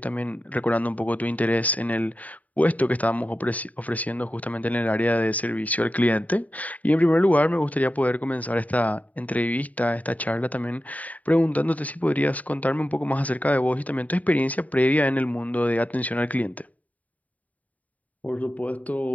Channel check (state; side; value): late; right; 0.071 ms